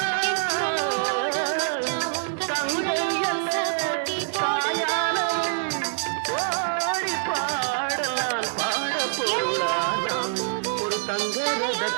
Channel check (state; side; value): silent; left; 62 dB below the other